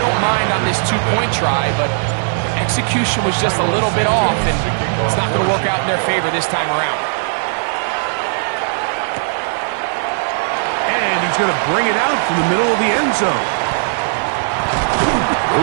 don't mind on this 2-point try, but execution was just a little bit off, and it's not going to work out in their favor this time around. And he's going to bring it out from the middle of the end zone.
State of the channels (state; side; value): silent; left; digital silence